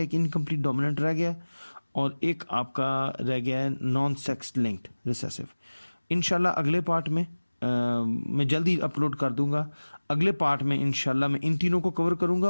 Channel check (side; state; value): both; inverted; correlation -1.00